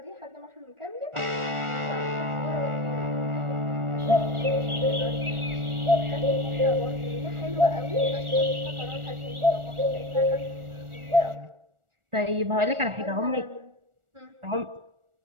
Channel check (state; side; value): late; left; 1.4 ms